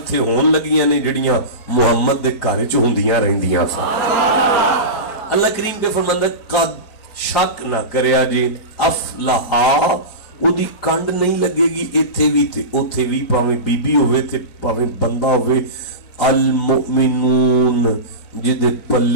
ہون لگیاں نے جڑیاں محمد دے گھر چ ہوندیاں رہندیاں اللہ کریم پہ فرماندا قد شک نہ کریا جی افلحا او دی کنڈ نہیں لگے گی ایتھے بھی تے اوتھے بھی پاویں بی بی ہوئے تے پاویں بندہ ہوئے المؤمنون جدے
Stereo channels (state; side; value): late; right; 4.4 ms